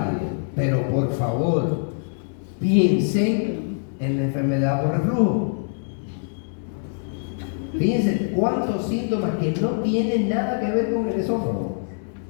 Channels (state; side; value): silent; right; digital silence